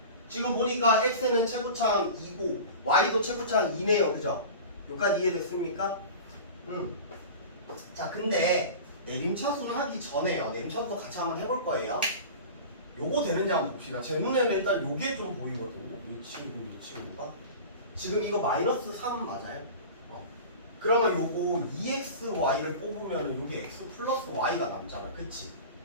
지금 보니까 x는 최고차항 2고 y도 최고차항 2네요. 그죠? 여기까지 이해됐습니까? 자, 근데 내림차순 하기 전에요. 내림차순 같이 한번 해볼 거예요. 요거 되는지 한번 봅시다. 제 눈에는 일단 요게 좀 보이거든요. 이 친구가 지금 이거 마이너스 3 맞아요? 그러면 요거 2xy를 뽑으면 요게 x 플러스 y가 남잖아. 그치?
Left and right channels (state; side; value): inverted; both; correlation -0.35